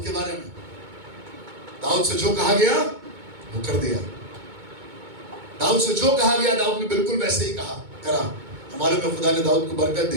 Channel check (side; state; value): left; late; 2.2 ms